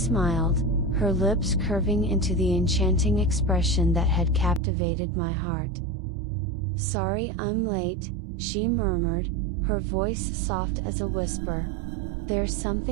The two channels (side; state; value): left; drops out; at 4.6 s